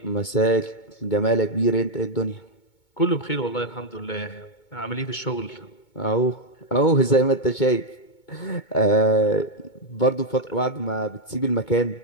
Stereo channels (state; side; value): late; right; 2.2 ms